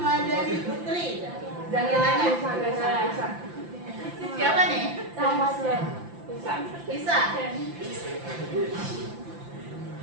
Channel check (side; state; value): left; late; 5.8 ms